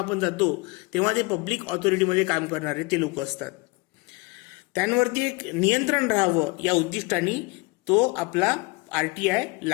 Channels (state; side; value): quieter; right; 26.1 dB